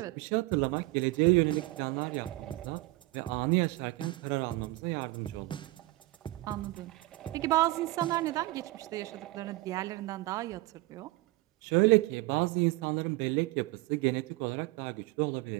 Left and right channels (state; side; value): quieter; left; 20.0 dB